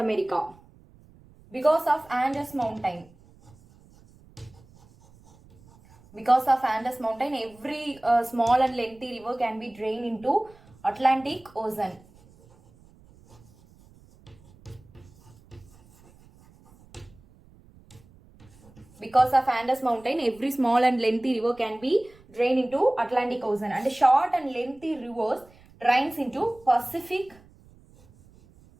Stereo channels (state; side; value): noise; right; rumble, 26 dB below the sound